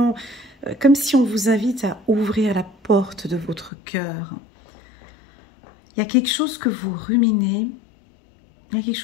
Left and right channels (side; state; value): right; drops out; at 3.7 s